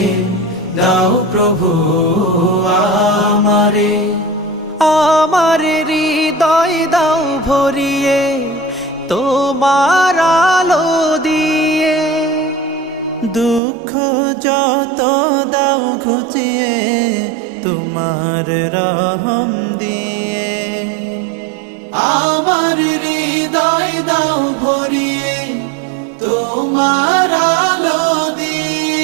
দাও প্রভু আমারে। আমার হৃদয় দাও ভরিয়ে তোমার আলো দিয়ে, দুঃখ যত দাও ঘুচিয়ে তোমার রহম দিয়ে। আমার হৃদয় দাও ভরিয়ে তোমার আলো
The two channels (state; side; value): drops out; left; at 13.6 s